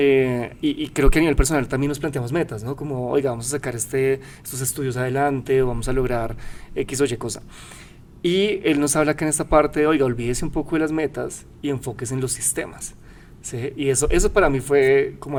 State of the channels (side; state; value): both; identical; correlation 1.00